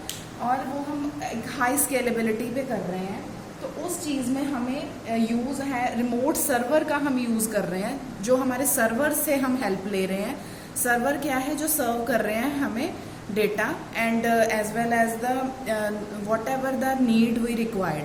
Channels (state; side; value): identical; both; correlation 1.00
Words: और वो हम एक हाई स्केलेबिलिटी पे कर रहे हैं, तो उस चीज़ में हमें यूज़ है रिमोट सर्वर का हम यूज़ कर रहे हैं, जो हमारे सर्वर से हम हेल्प ले रहे हैं। सर्वर क्या है, जो सर्व कर रहे हैं हमें data and as well as the whatever the need we